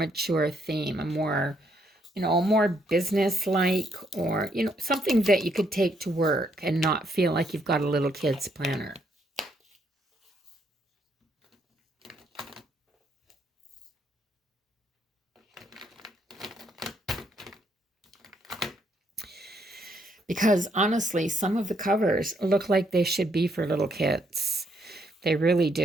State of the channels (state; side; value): normal; both; correlation 0.73